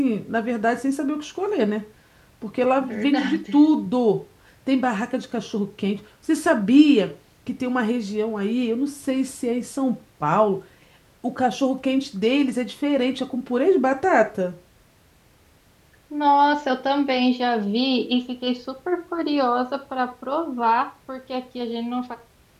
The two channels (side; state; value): both; identical; correlation 1.00